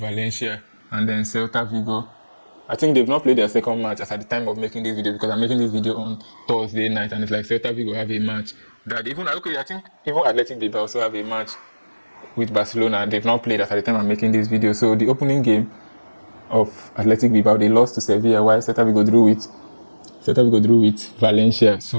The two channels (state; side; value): inverted; both; correlation -1.00